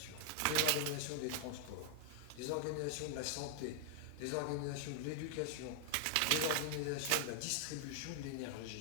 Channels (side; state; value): both; different; correlation 0.00